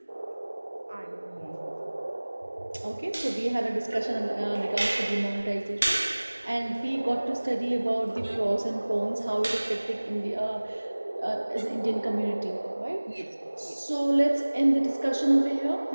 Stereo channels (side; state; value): both; inverted; correlation -1.00